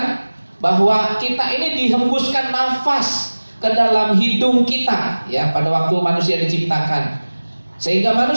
bahwa kita ini dihembuskan nafas ke dalam hidung kita, ya, pada waktu manusia diciptakan. Sehingga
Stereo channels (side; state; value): both; inverted; correlation -1.00